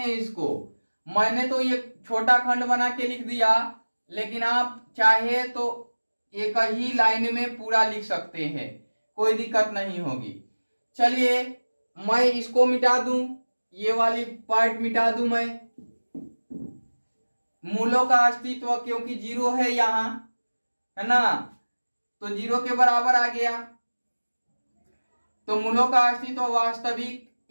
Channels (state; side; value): inverted; both; correlation -1.00